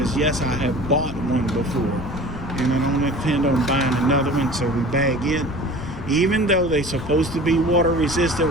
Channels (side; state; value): left; noise; rumble, 9 dB below the sound